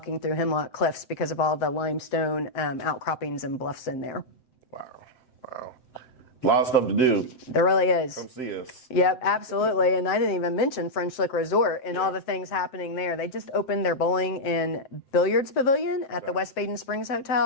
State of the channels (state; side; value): late; right; 7.7 ms